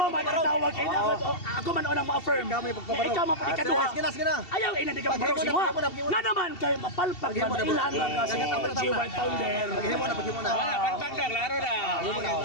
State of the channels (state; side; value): late; right; 2.7 ms